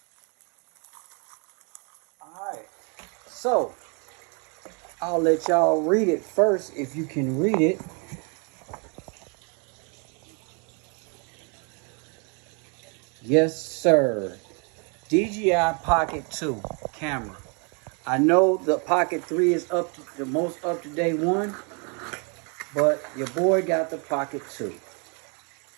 All right, so I'll let y'all read it first if you can read it. Yes, sir. DJI Pocket 2 camera. I know the Pocket 3 is the most up-to-date one, but your boy got the Pocket 2.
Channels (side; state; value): left; quieter; 36.2 dB